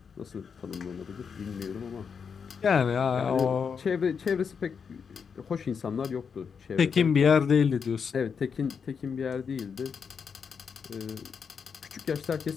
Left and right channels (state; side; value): quieter; right; 6.3 dB